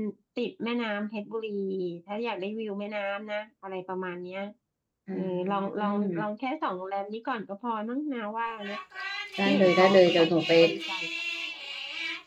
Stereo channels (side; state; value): both; identical; correlation 1.00